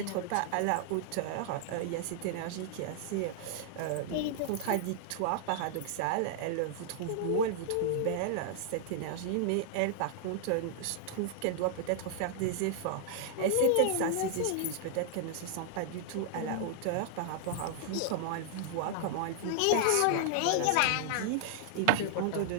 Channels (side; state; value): both; different; correlation -0.01